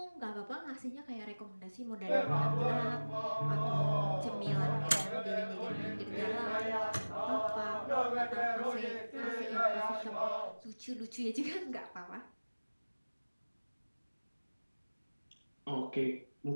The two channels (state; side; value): inverted; both; correlation -1.00